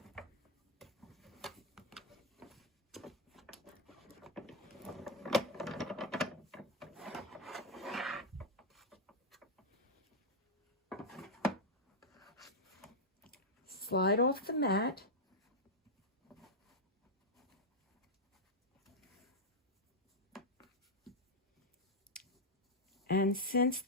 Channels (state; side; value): normal; both; correlation -0.02